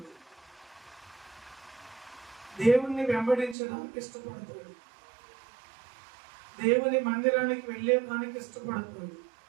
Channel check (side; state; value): left; drops out; at 3.6 s